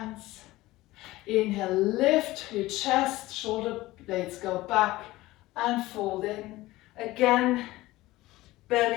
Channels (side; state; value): right; quieter; 18.2 dB